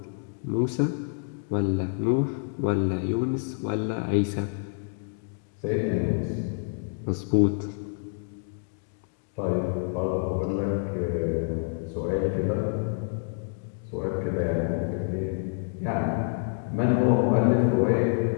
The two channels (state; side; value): silent; right; 60 dB below the other